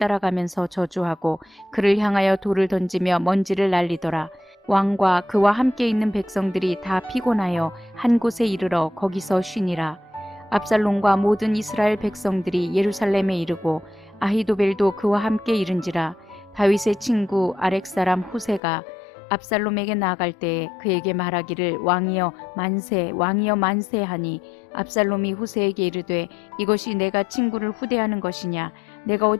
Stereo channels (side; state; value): right; drops out; at 18.6 s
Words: 저주하고 그를 향하여 돌을 던지며 먼지를 날리더라. 왕과 그와 함께 있는 백성들이 다 피곤하여 한 곳에 이르러 거기서 쉬니라. 압살롬과 모든 이스라엘 백성들이 예루살렘에 이르고 아히도벨도 그와 함께 이른지라. 다윗의 친구 아렉 사람 후세가 압살롬에게 나아갈 때에 그에게 말하기를 왕이여 만세 왕이여 만세 하니 압살롬이 후세에게 이르되 이것이 내가 친구를 후대하는 것이냐. 내가